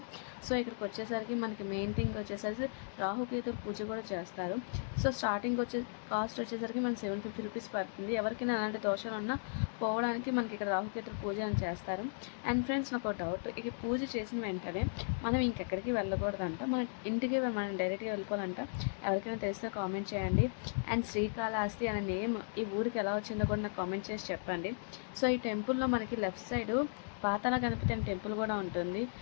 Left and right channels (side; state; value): right; silent; digital silence